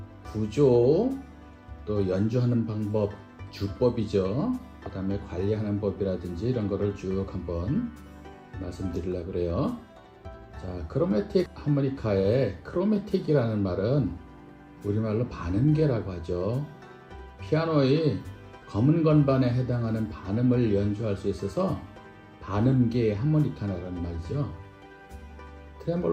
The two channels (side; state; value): both; identical; correlation 1.00